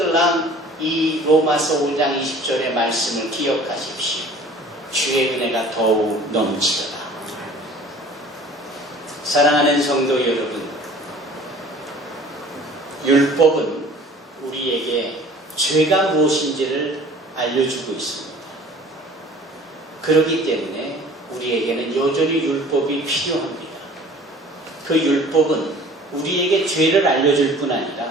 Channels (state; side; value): normal; both; correlation 0.47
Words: 이 로마서 5장 20절의 말씀을 기억하십시오. 주의 은혜가 더욱 넘치더라. 사랑하는 성도 여러분, 율법은 우리에게 죄가 무엇인지를 알려주고 있습니다. 그렇기 때문에 우리에게는 여전히 율법이 필요합니다. 그 율법은 우리에게 죄를 알려줄 뿐